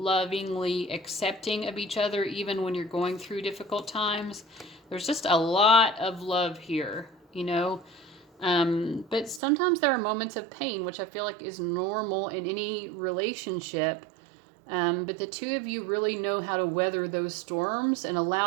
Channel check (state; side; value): drops out; left; at 9.4 s